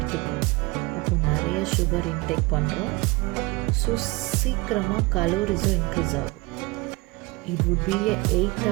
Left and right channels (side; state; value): left; quieter; 23.1 dB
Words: அப்போது நிறைய சுகர் இன்டேக் பண்ணுறோம். ஸோ சீக்கிரமாக கலோரிஸும் இன்க்ரீஸ் ஆகும். It would B